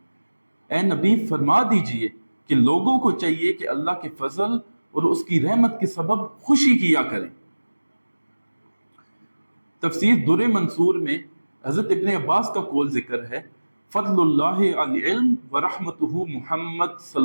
اے نبی فرما دیجئے کہ لوگوں کو چاہیے کہ اللہ کے فضل اور اس کی رحمت کے سبب خوشی کیا کریں۔ تفسیر در منصور میں حضرت ابن عباس کا قول ذکر ہے، فضل اللہ علی علم ورحمتہ محمد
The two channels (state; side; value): inverted; both; correlation -1.00